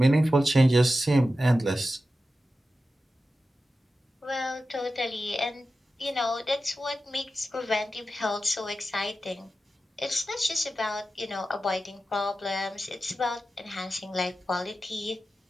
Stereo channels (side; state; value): both; normal; correlation 0.92